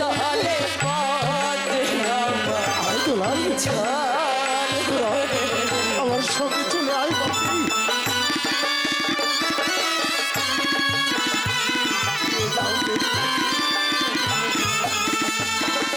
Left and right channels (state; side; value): identical; both; correlation 1.00